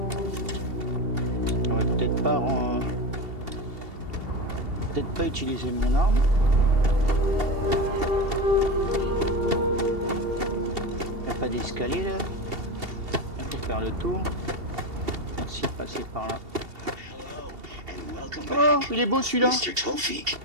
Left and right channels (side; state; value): left; late; 2.7 ms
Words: J'aurais peut-être pas utiliser mon arme. Il n'y a pas d'escalier là. Il faut faire le tour. Merci de passer par là. Oh, il est beau celui-là.